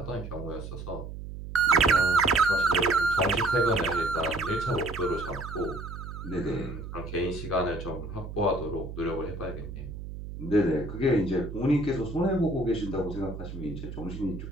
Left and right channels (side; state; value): right; noise; hum, 10 dB below the sound